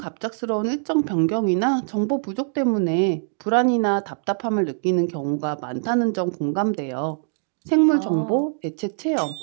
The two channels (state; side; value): silent; left; digital silence